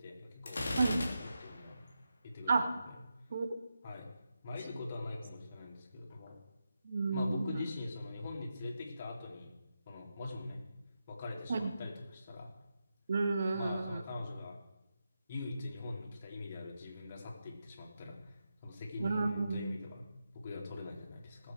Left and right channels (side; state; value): both; inverted; correlation -0.88